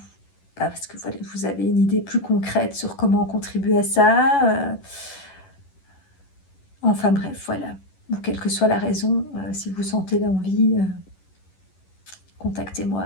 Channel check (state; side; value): late; right; 11 ms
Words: vous avez une idée plus concrète sur comment contribuer à ça. Enfin bref, voilà. Ou quelle que soit la raison, si vous sentez l'envie,